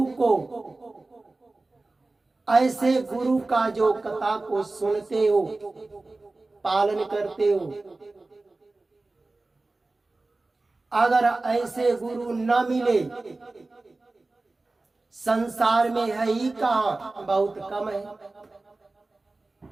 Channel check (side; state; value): left; quieter; 3.2 dB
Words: गुरु का जो कथा को सुनते हो, पालन करते हो, अगर ऐसे गुरु न मिले, संसार में है ही कहाँ, बहुत कम है।